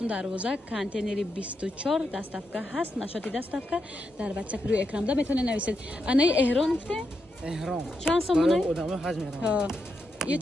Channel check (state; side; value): normal; both; correlation 0.84